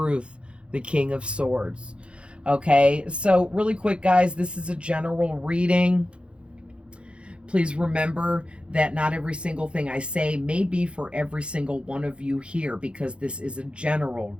the King of Swords. Okay, so really quick, guys, this is a general reading. Please remember that not every single thing I say may be for every single one of you here, because this is a general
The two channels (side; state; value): left; late; 0.058 ms